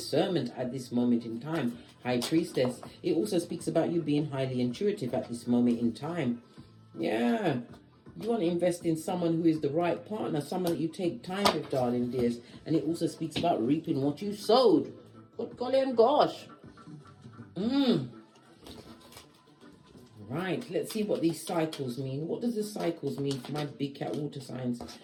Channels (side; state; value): both; identical; correlation 1.00